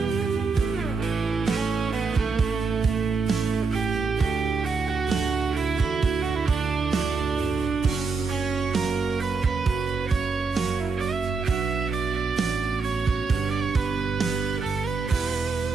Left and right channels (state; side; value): quieter; left; 4.5 dB